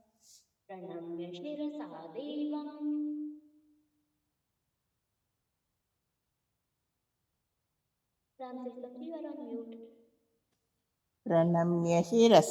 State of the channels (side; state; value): both; identical; correlation 1.00